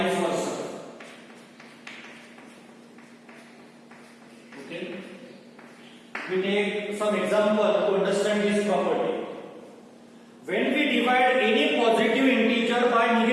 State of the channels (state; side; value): identical; both; correlation 1.00